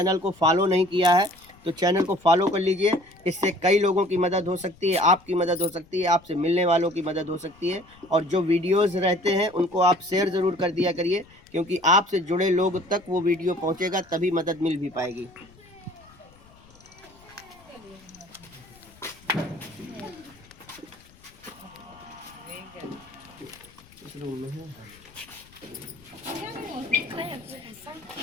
को फॉलो नहीं किया है तो चैनल को फॉलो कर लीजिए। इससे कई लोगों की मदद हो सकती है, आपकी मदद हो सकती है, आपसे मिलने वालों की मदद हो सकती है। और जो वीडियोस रहते हैं उनको आप शेयर ज़रूर कर दिया करिए, क्योंकि आपसे जुड़े लोग तक वो वीडियो पहुंचेगा, तभी मदद मिल भी पाएगी। इस रूम में है।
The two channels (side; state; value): left; noise; rumble, 26 dB below the sound